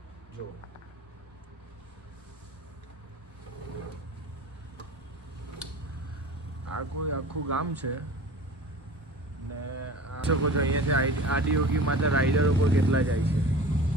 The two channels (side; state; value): both; normal; correlation 0.38